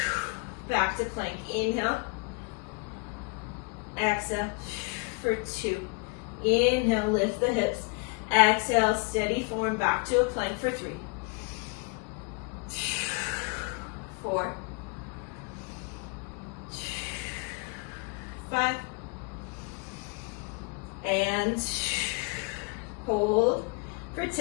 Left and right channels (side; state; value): right; quieter; 31.6 dB